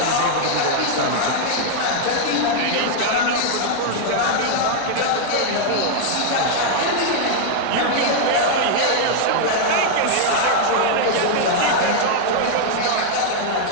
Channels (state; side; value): different; both; correlation -0.01